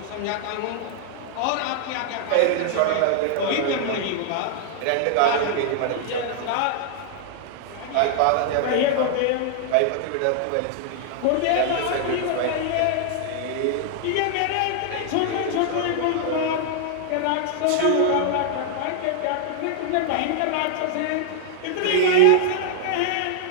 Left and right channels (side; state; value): both; different; correlation -0.01